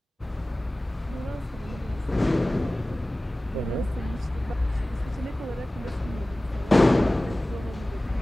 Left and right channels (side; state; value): both; normal; correlation 0.98